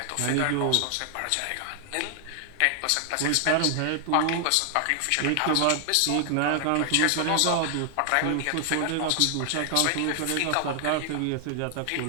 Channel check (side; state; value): both; different; correlation 0.00